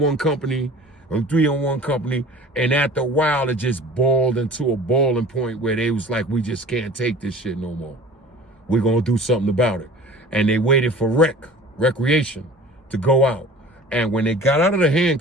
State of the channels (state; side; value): normal; both; correlation 0.43